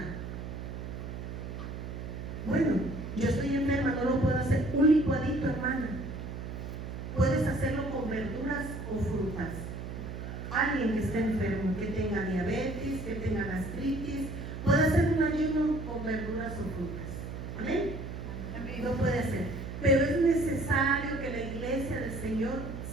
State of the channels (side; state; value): right; noise; hum, 7 dB below the sound